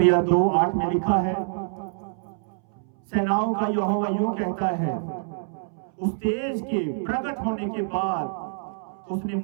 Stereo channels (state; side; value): silent; left; 61 dB below the other